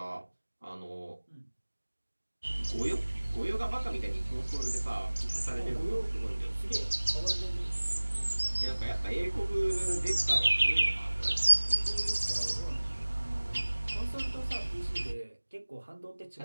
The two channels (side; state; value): both; inverted; correlation -1.00